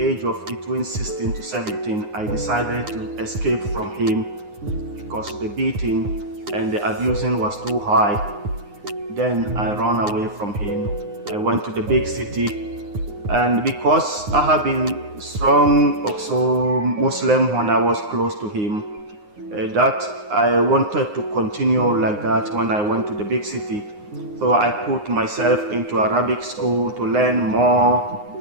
of between 16 to 17, I decided to escape from him because the beating and the abusing was too high. Then I ran away from him. I went to the big city, and because I have been strong, also Muslim when I was close to him, that I wanted to continue like that when I went to the big city. So I put myself into Arabic school to learn more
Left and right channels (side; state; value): left; late; 9.6 ms